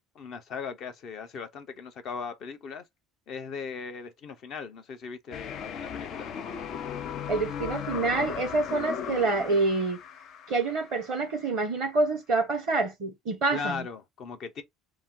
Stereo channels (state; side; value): normal; both; correlation 0.32